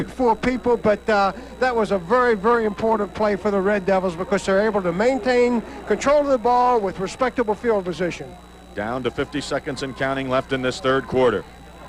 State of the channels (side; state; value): both; identical; correlation 1.00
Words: or 4 people, but that was a very, very important play for the Red Devils, because they're able to maintain control of the ball with respectable field position. Down to 50 seconds and counting left in this 3rd quarter.